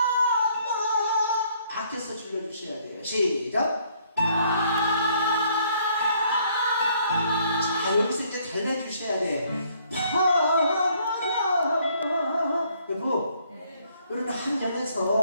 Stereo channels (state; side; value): inverted; both; correlation -0.65